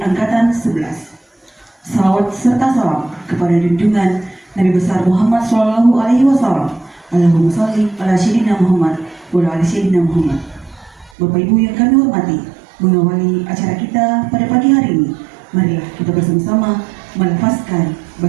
11. Salawat serta salam kepada junjungan Nabi besar Muhammad SAW. Allahumma sholli ala sayyidina Muhammad wa ala ali sayyidina Muhammad. Bapak Ibu yang kami hormati, mengawali acara kita pada pagi hari ini, marilah kita bersama-sama melafazkan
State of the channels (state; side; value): drops out; left; at 11.1 s